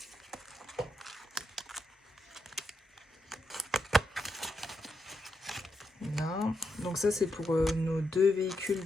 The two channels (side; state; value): both; normal; correlation 0.82